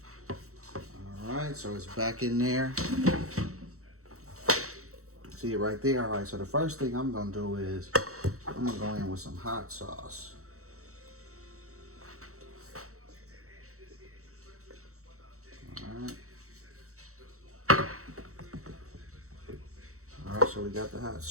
All right, so it's back in there. See it right there? All right, so the first thing I'm gonna do is I'm gonna go in with some hot sauce. All right, so we got the hot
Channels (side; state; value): left; late; 0.64 ms